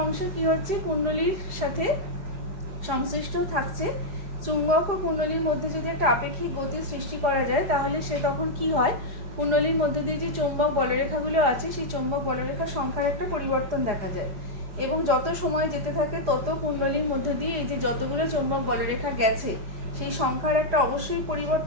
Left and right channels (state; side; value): late; left; 4.8 ms